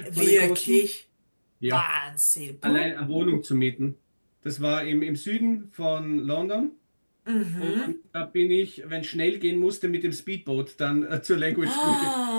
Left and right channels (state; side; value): inverted; both; correlation -1.00